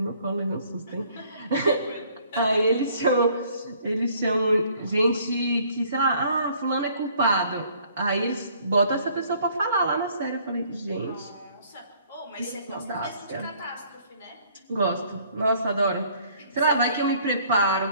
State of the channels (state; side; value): inverted; both; correlation -0.60